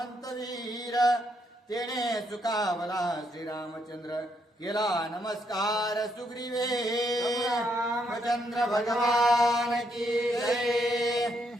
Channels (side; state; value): both; normal; correlation 0.76